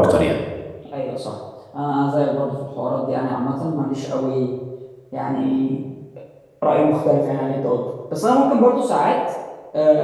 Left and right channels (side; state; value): both; identical; correlation 1.00